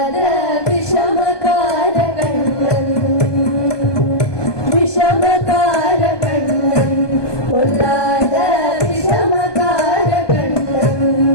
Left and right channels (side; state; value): right; late; 1.2 ms